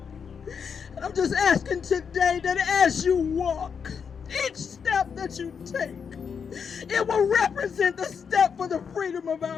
I'm just asking today that as you walk, each step that you take, it will represent the step for the freedom of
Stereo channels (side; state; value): right; quieter; 6.5 dB